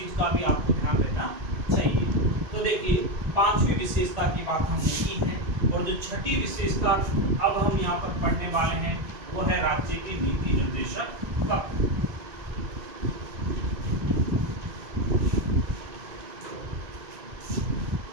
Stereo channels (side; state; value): left; late; 1.9 ms